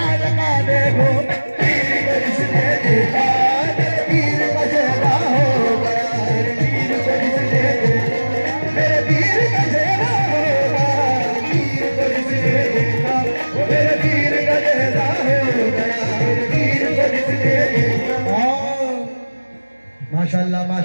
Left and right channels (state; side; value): inverted; both; correlation -1.00